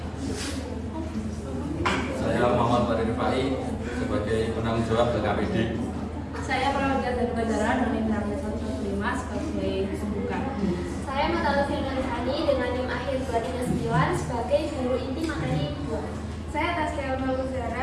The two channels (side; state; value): both; identical; correlation 1.00